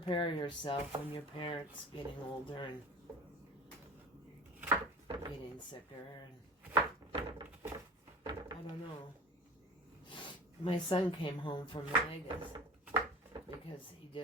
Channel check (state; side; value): normal; both; correlation 0.37